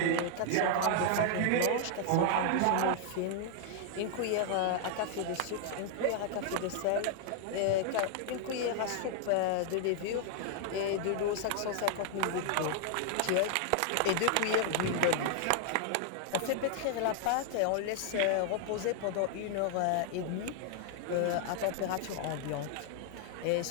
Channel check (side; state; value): both; different; correlation 0.00